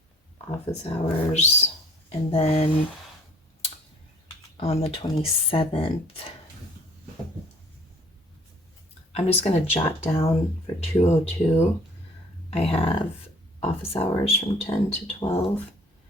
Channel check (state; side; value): normal; both; correlation 0.55